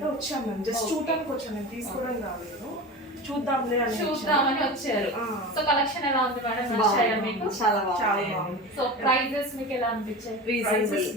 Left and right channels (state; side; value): normal; both; correlation 0.30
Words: వచ్చాను మేము. జస్ట్ చూడడానికి వచ్చాను, నేను తీసుకోవడం రాలేదు, చూద్దామని వచ్చారు. సో కలెక్షన్ ఎలా ఉంది మేడం? నచ్చాయా మీకు? చాలా బాగుంది. సో ప్రైజెస్ మీకు ఎలా అనిపించాయి?